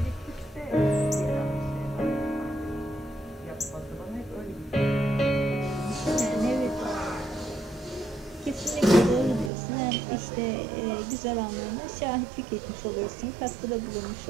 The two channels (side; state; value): left; drops out; at 9.5 s